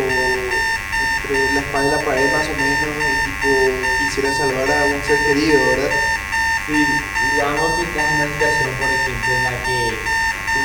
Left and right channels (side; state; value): both; identical; correlation 1.00